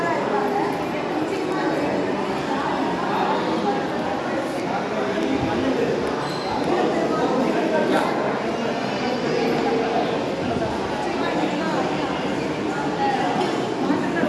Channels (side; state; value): both; identical; correlation 1.00